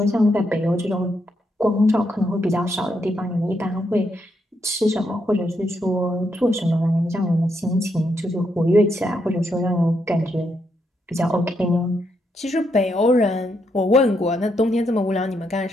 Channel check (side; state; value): both; normal; correlation 0.79